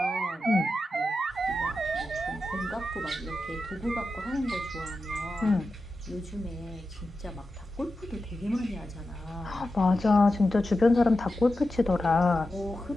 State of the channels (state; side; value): normal; both; correlation 0.91